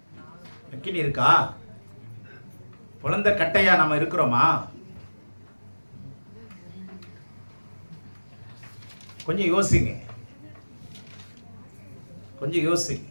அக்கினி இருக்கா? பிளந்த கட்டையா நம்ம இருக்கிறோமா? கொஞ்சம் யோசிங்க, கொஞ்சம் யோசிங்க.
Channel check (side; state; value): both; inverted; correlation -1.00